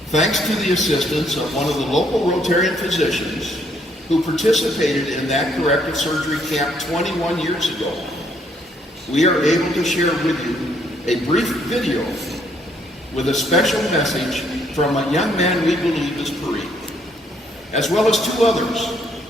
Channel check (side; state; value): both; normal; correlation 0.69